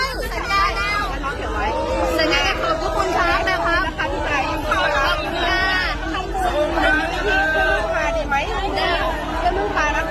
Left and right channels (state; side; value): identical; both; correlation 1.00